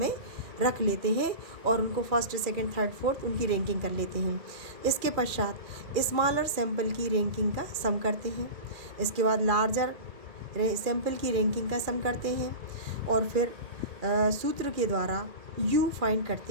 रख लेते हैं और उनको फर्स्ट सेकंड थर्ड फोर्थ उनकी रैंकिंग कर लेते हैं। इसके पश्चात स्मॉलर सैंपल की रैंकिंग का सम करते हैं। इसके बाद लार्जर सैंपल की रैंकिंग का सम करते हैं और फिर सूत्र के द्वारा यू फाइंड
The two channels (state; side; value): late; left; 2.3 ms